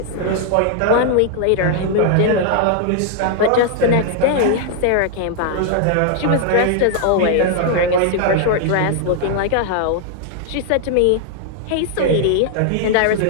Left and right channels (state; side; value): different; both; correlation 0.00